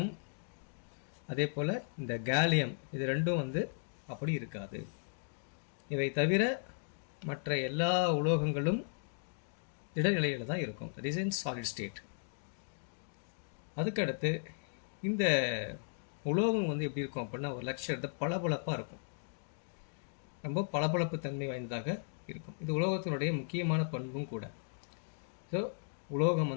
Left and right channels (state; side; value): silent; right; digital silence